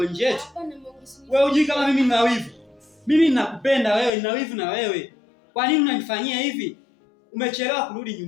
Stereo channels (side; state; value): right; drops out; at 4.1 s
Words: nje eti? Wewe hujui kama mimi nina wivu? Mimi ninakupenda wewe, nina wivu na wewe. Kwa nini unanifanyia hivi? Umechelewa kurudi